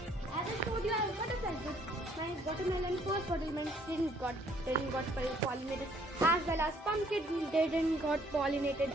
As I showed you, I have butterflies. My watermelon first watermelon didn't got pollinated, as well as pumpkin didn't got pollinated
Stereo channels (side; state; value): both; normal; correlation 0.63